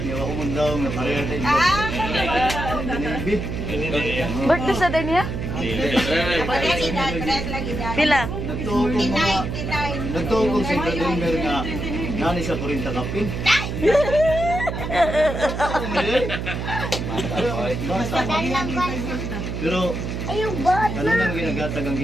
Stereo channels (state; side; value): noise; right; hum, 4 dB below the sound